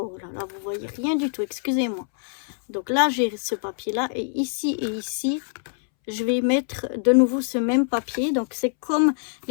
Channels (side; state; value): right; silent; 62 dB below the other